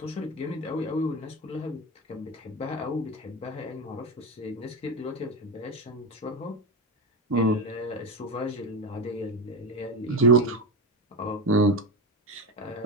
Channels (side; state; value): both; normal; correlation 0.17